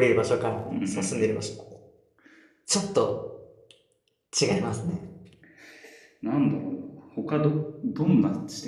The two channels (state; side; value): identical; both; correlation 1.00